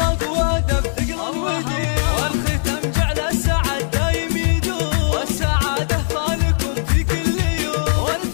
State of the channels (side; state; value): right; silent; 66 dB below the other